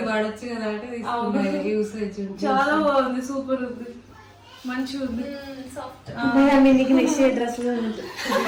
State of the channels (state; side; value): identical; both; correlation 1.00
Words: వాడచ్చు కదా అంటే యూసేజ్ చాలా బాగుంది, సూపర్ ఉంది, మంచిగా ఉంది. మీకు నెక్స్ట్ డ్రెస్